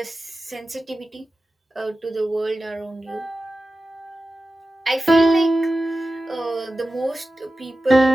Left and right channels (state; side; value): normal; both; correlation 0.94